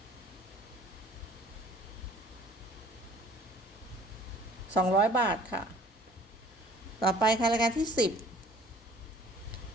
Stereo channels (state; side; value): normal; both; correlation 0.53